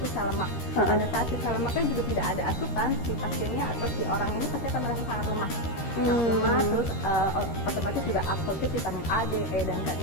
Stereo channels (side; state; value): right; late; 13 ms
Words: sel lemak. Pada saat si sel lemaknya juga tidak ada asupan, si pasiennya atau si orang ini pasti akan merasa sangat lemak. Lemak, terus otomatis juga absorpsi vitamin A, D, E, dan K